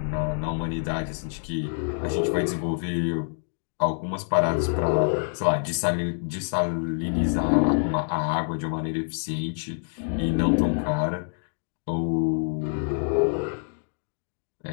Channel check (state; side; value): silent; right; digital silence